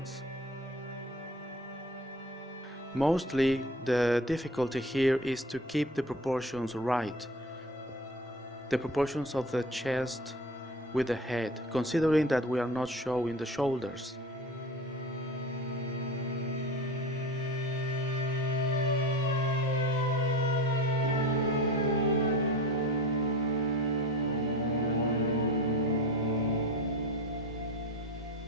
Mostly the difficulty here is to keep the proportions right. The proportions of the chest with the head, considering that we are not showing the shoulders.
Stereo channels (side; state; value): both; normal; correlation 0.35